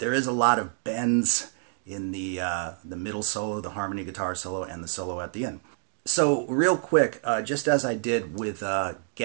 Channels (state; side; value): silent; left; digital silence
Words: is a lot of bends in the middle solo, the harmony guitar solo, and the solo at the end. So real quick, just as I did with